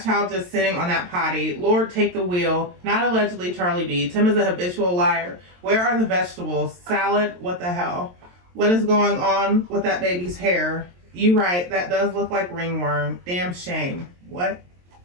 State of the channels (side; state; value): left; late; 23 ms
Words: child just sitting on that potty? Lord, take the wheel. Not allegedly Charlie B. Tim is a habitual liar. Where are the vegetables? Salad? What the hell? What is going on with that baby's hair? You right, that does look like ringworm. Damn shame. What?